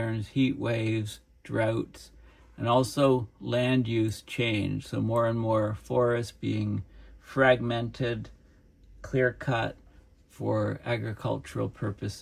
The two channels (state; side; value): identical; both; correlation 1.00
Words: heat waves, droughts, and also land use change. So more and more forests being fragmented, clear-cut for agricultural